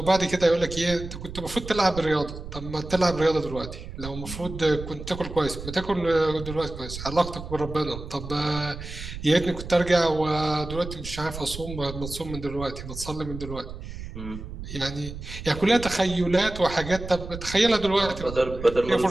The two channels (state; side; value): noise; right; rumble, 10 dB below the sound